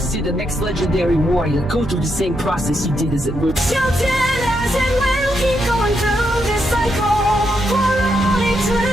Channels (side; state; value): both; normal; correlation 0.80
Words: to see the next legendary warrior go through the same process he did, as it were. Shouting as it will keep going through this cycle for all